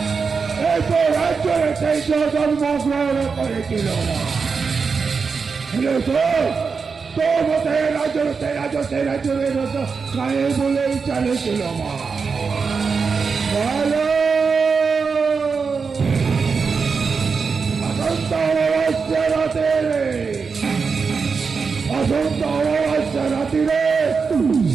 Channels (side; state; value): left; quieter; 5.2 dB